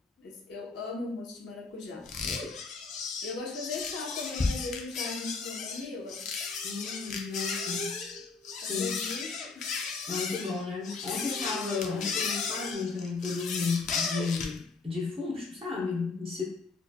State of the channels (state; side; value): quieter; right; 4.3 dB